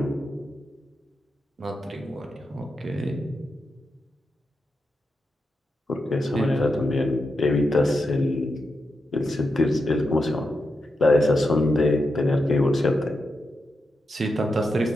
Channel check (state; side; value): normal; both; correlation 0.86